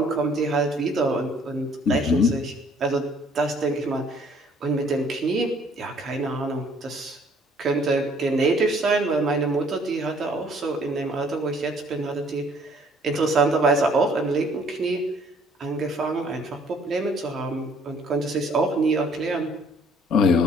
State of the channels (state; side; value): normal; both; correlation 0.59